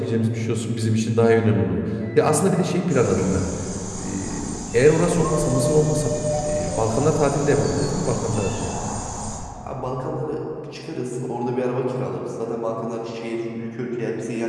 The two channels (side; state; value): both; identical; correlation 1.00